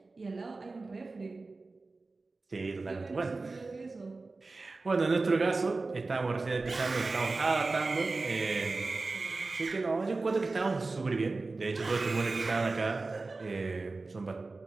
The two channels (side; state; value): left; quieter; 3.6 dB